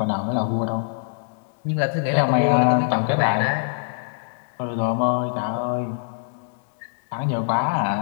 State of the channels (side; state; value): right; silent; 63 dB below the other